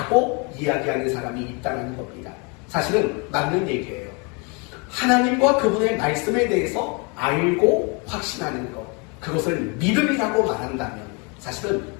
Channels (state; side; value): quieter; right; 32.4 dB